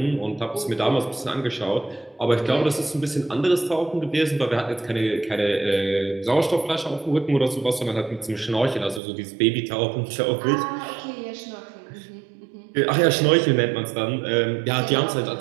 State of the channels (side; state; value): left; drops out; at 9.0 s